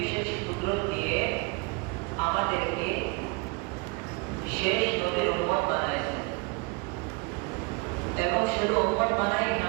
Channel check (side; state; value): left; quieter; 28.1 dB